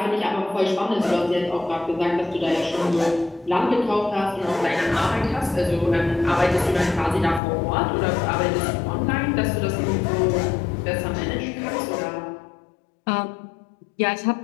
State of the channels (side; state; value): right; drops out; at 7.4 s